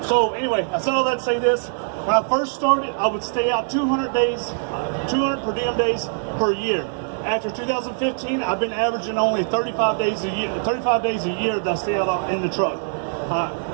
so. Anyway, I said all that to say this. When I first started, I would stay out 200 days, 200 per diem days per year. After 2015, I've been averaging only 35 days a year. 35 days a year that I stay out in the truck.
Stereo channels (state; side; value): silent; left; 64 dB below the other